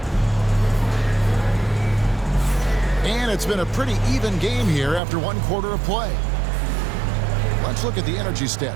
And it's been a pretty even game here after 1 quarter of play. Let's look at the energy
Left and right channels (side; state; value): left; drops out; at 5.0 s